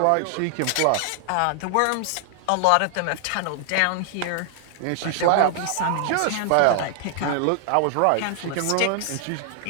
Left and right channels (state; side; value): different; both; correlation 0.00